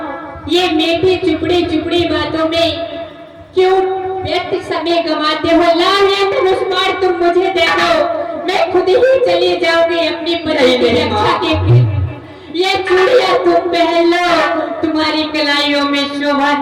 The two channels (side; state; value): both; identical; correlation 1.00